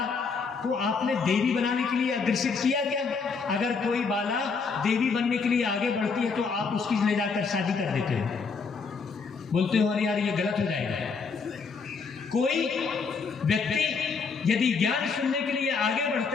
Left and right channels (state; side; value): quieter; right; 5.1 dB